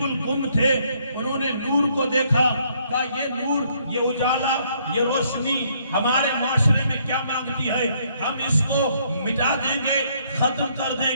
گم تھے، انہوں نے نور کو دیکھا، کہا یہ نور، یہ اجالا، یہ روشنی ہمارے معاشرے میں کیا مانگتی ہے، ہم اس کو مٹا دیں گے، ختم کر دیں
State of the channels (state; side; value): inverted; both; correlation -0.68